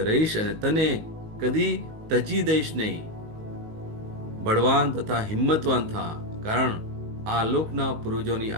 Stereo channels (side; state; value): left; late; 19 ms